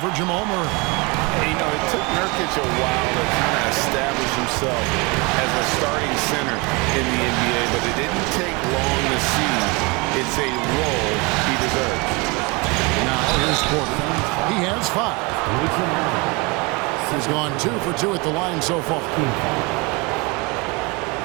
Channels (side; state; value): left; quieter; 27.6 dB